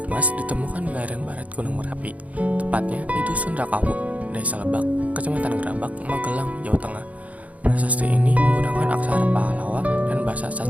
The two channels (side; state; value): left; late; 0.069 ms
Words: ditemukan di lereng barat Gunung Merapi, tepatnya di Dusun Rakawu, Desa Lebak, Kecamatan Gerabak, Magelang, Jawa Tengah. Prasasti ini menggunakan aksara Pahlawa dan bahasa